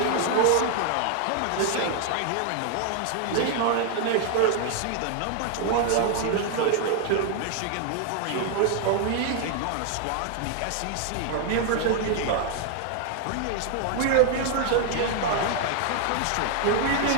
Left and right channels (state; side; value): different; both; correlation 0.00